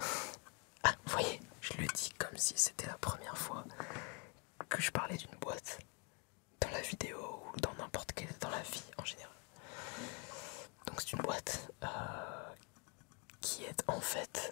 Ah, vous voyez, je le dis comme si c'était la première fois que je parlais d'une boîte dans la vidéo ou dans n'importe quelle, dans la vie en général. Donc c'est une boîte qui est en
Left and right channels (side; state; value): right; quieter; 32.8 dB